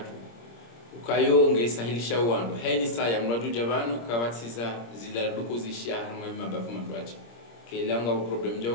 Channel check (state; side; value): late; right; 26 ms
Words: ukayo ngesahilisha wandu haini saa ya mraju jabanu kawatiza zila duko zishia harma mabavu mandwaji kelanga problem jao